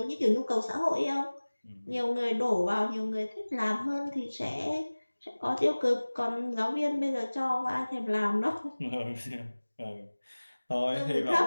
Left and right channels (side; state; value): both; inverted; correlation -1.00